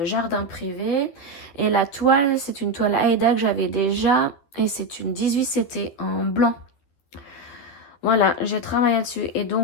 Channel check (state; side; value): late; right; 12 ms